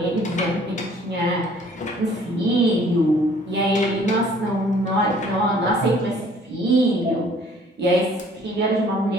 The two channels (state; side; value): normal; both; correlation 0.56